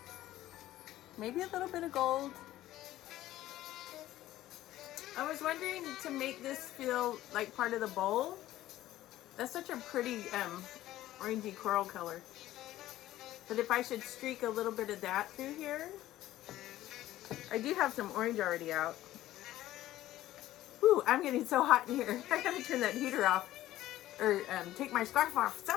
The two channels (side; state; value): right; quieter; 14.6 dB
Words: Maybe a little bit of gold. I was wondering to make this feel like part of the bowl. That's such a pretty orangey coral color. But if I should streak a little bit of that through here. I do have some orange already out. Ooh, I'm getting so hot in here. I gotta turn that heater off. Or take my scarf off,